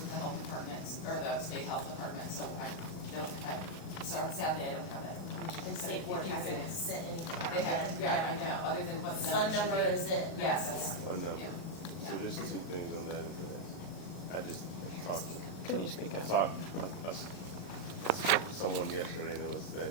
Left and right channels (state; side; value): late; right; 38 ms